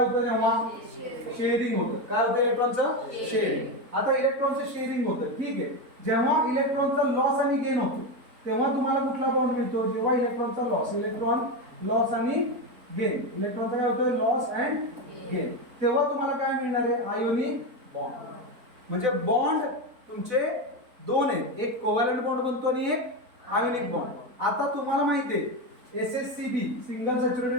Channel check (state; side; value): late; left; 4.1 ms